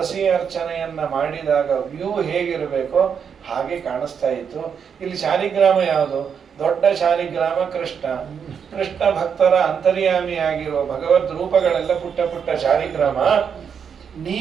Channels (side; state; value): left; quieter; 7.1 dB